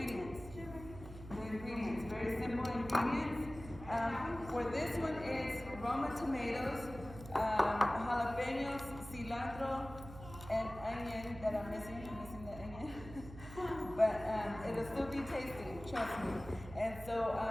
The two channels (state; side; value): noise; right; hum, 13 dB below the sound